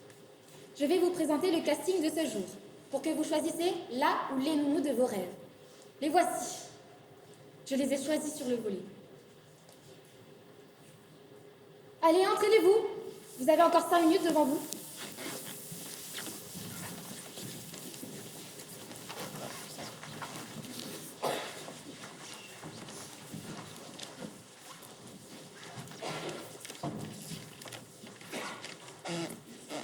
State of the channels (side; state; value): both; identical; correlation 1.00